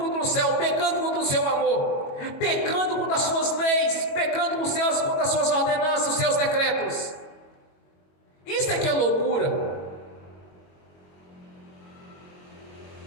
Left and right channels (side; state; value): right; late; 21 ms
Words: o céu, pecando contra o seu amor, pecando contra as suas leis, pecando contra as suas ordenanças, os seus decretos. Isso é que é loucura.